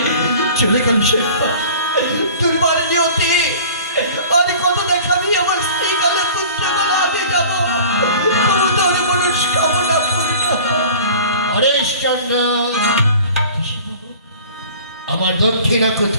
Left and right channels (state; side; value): inverted; both; correlation -0.44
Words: চলে গেল শিল্পা। তোর বাড়ি নিয়তি আর কত দেখাবি আমার স্ত্রী গেল, পুত্র গেল, আমি যাবো। তবু তোর মনস্কামনা পূর্ণ হোক। হরিশ্চন্দ্র, আমার দক্ষিণা